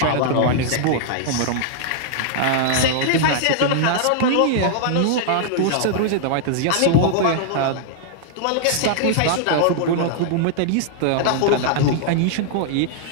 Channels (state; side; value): different; both; correlation -0.01